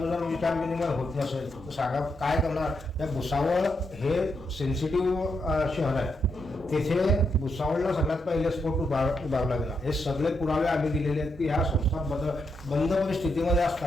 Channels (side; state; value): both; normal; correlation 0.81